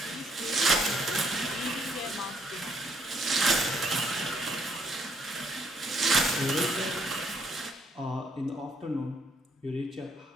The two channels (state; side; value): normal; both; correlation 0.70